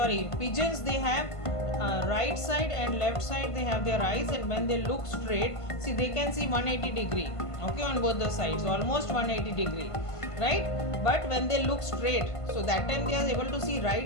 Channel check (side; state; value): right; late; 1.5 ms